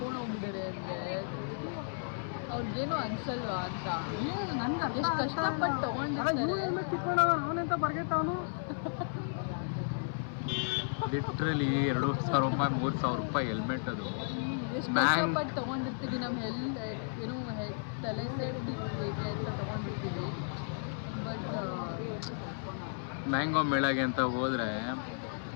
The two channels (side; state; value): right; silent; 55 dB below the other